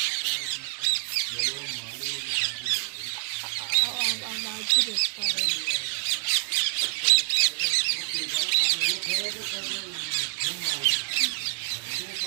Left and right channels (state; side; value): silent; left; digital silence